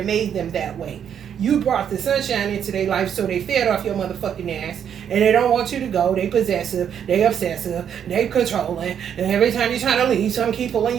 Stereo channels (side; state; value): left; quieter; 8.6 dB